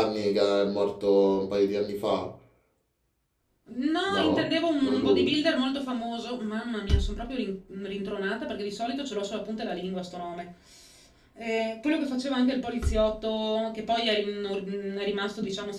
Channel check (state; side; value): identical; both; correlation 1.00